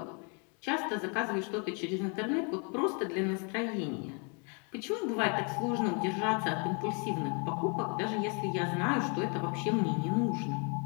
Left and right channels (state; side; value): quieter; right; 36.1 dB